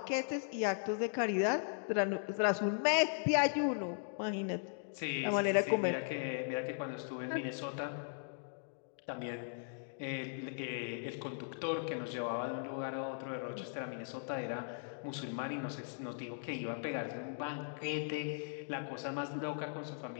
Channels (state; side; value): silent; right; digital silence